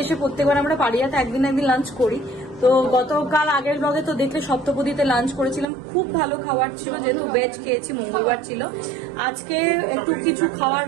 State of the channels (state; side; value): drops out; left; at 5.7 s